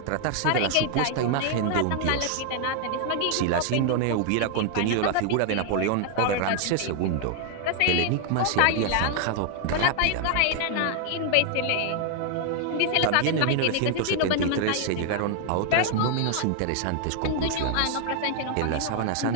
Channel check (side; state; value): both; different; correlation 0.00